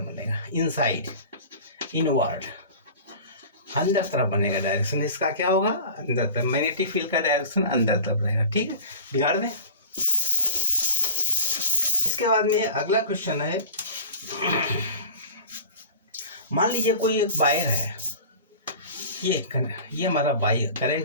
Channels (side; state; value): both; inverted; correlation -0.36